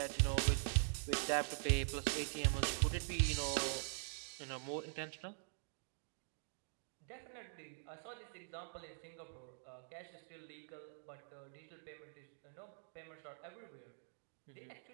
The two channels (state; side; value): silent; left; digital silence